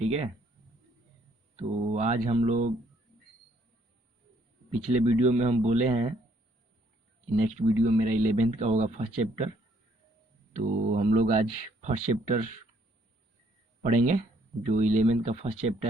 है, तो आज हम लोग पिछले वीडियो में हम बोले हैं कि नेक्स्ट वीडियो मेरा 11th का होगा फर्स्ट चैप्टर। तो हम लोग आज फर्स्ट चैप्टर पढ़ेंगे जो 11th का फर्स्ट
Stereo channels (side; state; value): both; normal; correlation 0.66